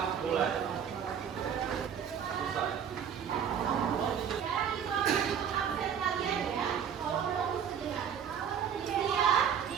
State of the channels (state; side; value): quieter; left; 8.0 dB